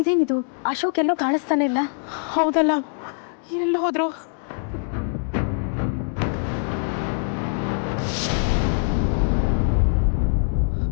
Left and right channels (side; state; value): right; silent; 59 dB below the other